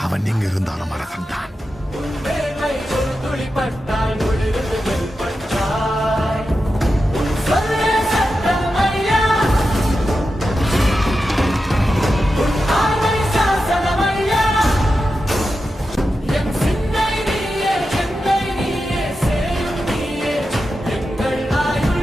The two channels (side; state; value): both; normal; correlation 0.90